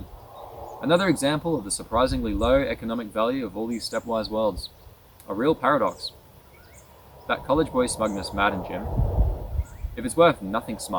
Another example of the surprisingly low economic value of all these stepwise worlds. A real paradox. That college boy smugness maddened Jim. "If it's worth nothing,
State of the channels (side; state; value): both; identical; correlation 1.00